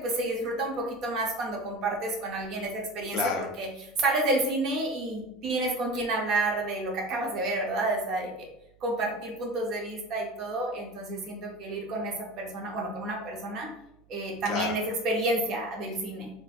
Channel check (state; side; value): noise; right; hum, 30 dB below the sound